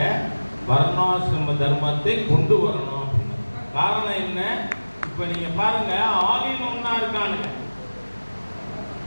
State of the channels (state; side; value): inverted; both; correlation -1.00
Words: வர்ணாசிரம தர்மத்தை கொண்டு வரணும். காரணம் என்ன? இப்ப நீங்க பாருங்க, ஆலின் ஒன்னா இருக்கானுங்க.